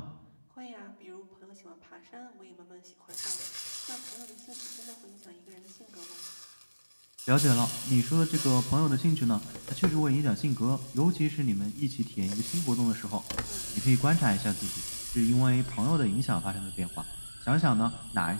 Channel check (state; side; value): inverted; both; correlation -1.00